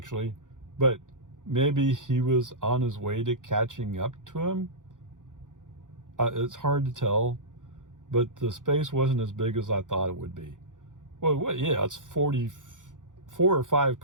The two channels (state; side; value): late; left; 0.87 ms